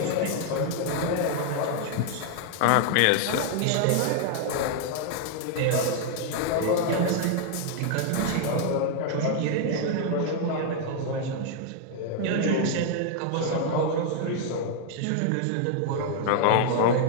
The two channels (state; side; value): different; both; correlation 0.00